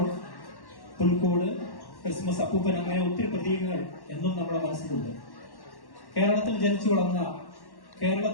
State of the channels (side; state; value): right; late; 1.1 ms